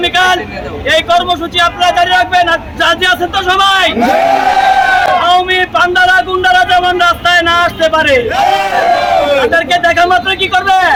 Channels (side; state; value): both; identical; correlation 1.00